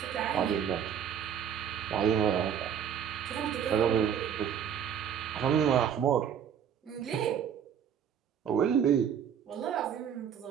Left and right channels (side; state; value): left; quieter; 8.5 dB